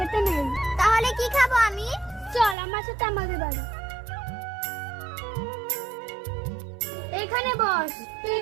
নেই। তাহলে কি খাবো আমি? চল আমার সাথে আমাদের বাড়ি। এখানে বস, তুই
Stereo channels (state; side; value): drops out; left; at 2.6 s